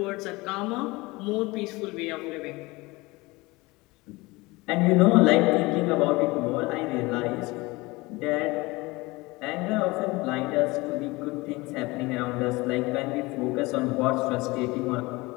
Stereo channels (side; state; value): right; quieter; 22.6 dB